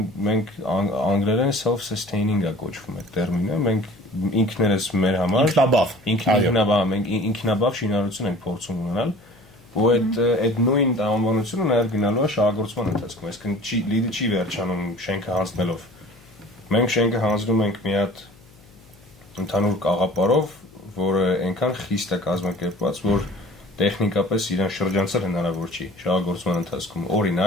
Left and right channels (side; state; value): left; noise; hum, 26 dB below the sound